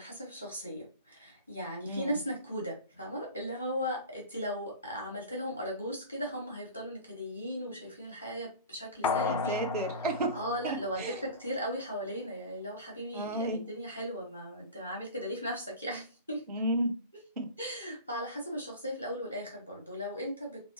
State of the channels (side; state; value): both; inverted; correlation -0.35